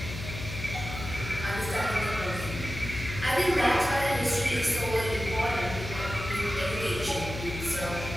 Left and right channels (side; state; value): left; noise; hum, 8 dB below the sound